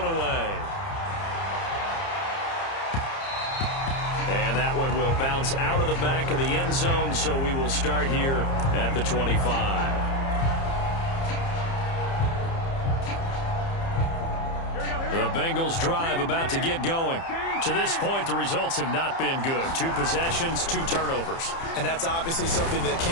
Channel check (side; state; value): right; late; 30 ms